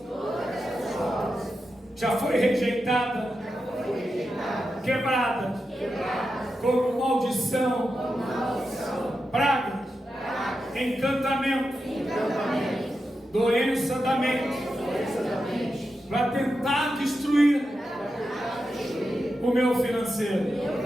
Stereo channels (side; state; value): both; normal; correlation 0.89